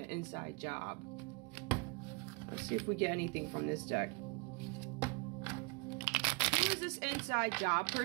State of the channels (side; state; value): left; quieter; 30.6 dB